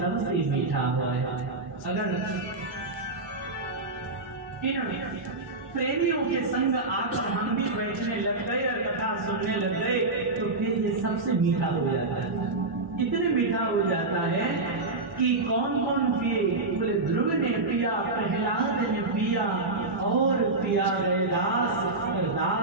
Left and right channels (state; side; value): quieter; left; 3.2 dB